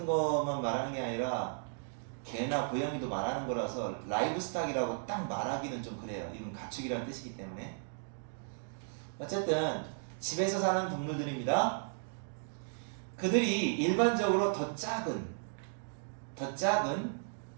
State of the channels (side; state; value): left; silent; digital silence